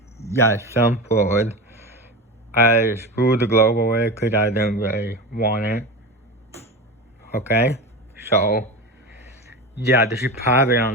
yeah, some forward. I screwed the globe away because I didn't really want it. Okay? So, yeah, this is probably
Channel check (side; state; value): both; normal; correlation 0.24